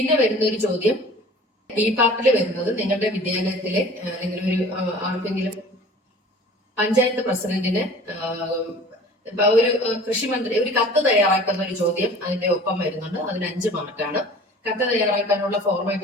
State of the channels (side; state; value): both; normal; correlation 0.45